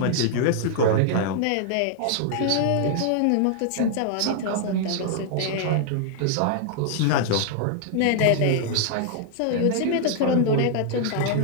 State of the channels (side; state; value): both; different; correlation 0.00